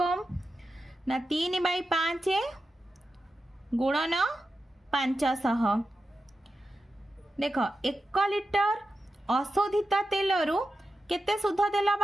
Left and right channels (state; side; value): normal; both; correlation 0.91